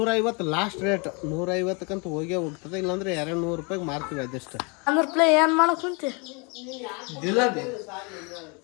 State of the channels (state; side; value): quieter; right; 32.0 dB